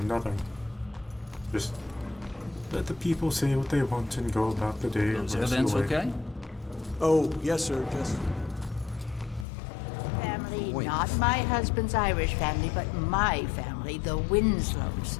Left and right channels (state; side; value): drops out; right; at 9.5 s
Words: nothing. Just let the people say what they want and go about the day. Is everything okay? Oh, yes, sir, just... Family, Wait. not my husband's Irish family, but my family, the Winslows.